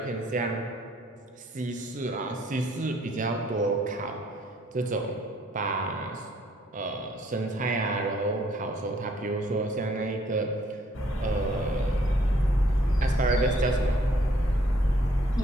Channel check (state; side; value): normal; both; correlation 0.64